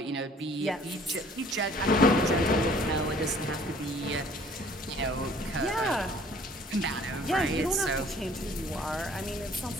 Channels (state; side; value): normal; both; correlation 0.55